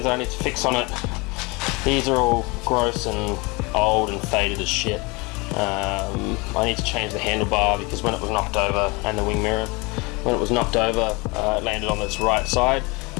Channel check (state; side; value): quieter; right; 26.5 dB